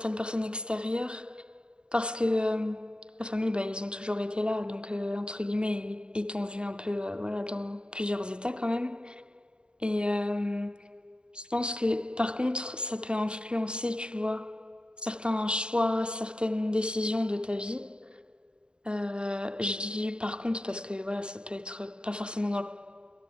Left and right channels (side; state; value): left; late; 0.050 ms